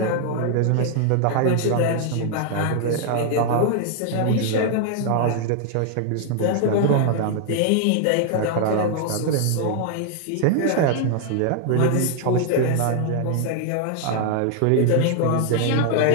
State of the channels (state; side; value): different; both; correlation 0.00